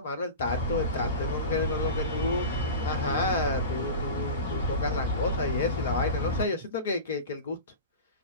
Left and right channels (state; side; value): inverted; both; correlation -0.30